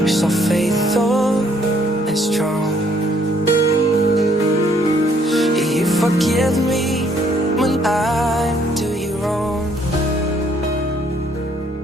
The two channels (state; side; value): normal; both; correlation 0.65